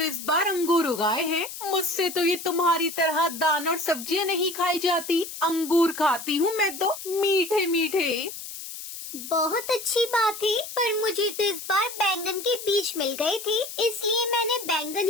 इस बार अंगूर उगाए हैं। मुझसे तो ये तुम्हारी तरह दाना और सब्जियां नहीं खाई जाती। अंगूर खाती हूँ मैं तो, मीठे मीठे। बहुत अच्छी बात है, पर मुझे तो इस बार बैंगन के बीज मिल गए थे, इसलिए मैंने बैंगन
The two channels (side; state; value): left; noise; hiss, 10 dB below the sound